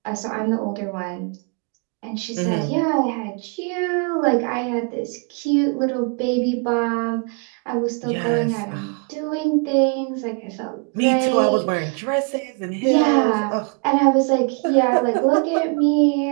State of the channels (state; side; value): quieter; left; 36.5 dB